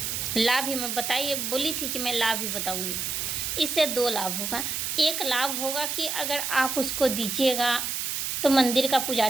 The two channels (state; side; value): noise; right; hiss, 2 dB below the sound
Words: लाभ ही मैं बताइए, बोली थी कि मैं लाभ ही बताऊंगी। इससे 2 लाभ होगा। एक लाभ होगा कि अगर आप उसको दीजिएगा तो मंदिर का